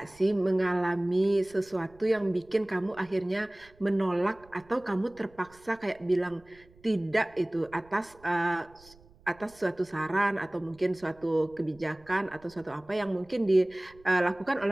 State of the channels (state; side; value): noise; right; rumble, 27 dB below the sound